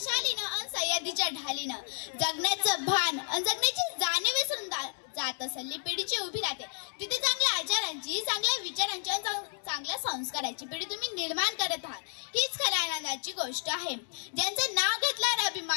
अन सह्याद्रीच्या ढालीनं जगण्याचं भान अन जगण्याची जाणीव विसरून जात असलेली पिढीची उभी राहते। तिथे चांगल्या आचारांची, चांगल्या विचारांची आणि चांगल्या संस्काराची पिढी तुम्ही निर्माण करत आहात, हीच खऱ्या आनंदाची गोष्ट आहे। ज्यांचं नाव घेतल्यावर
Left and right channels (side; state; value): right; silent; 57 dB below the other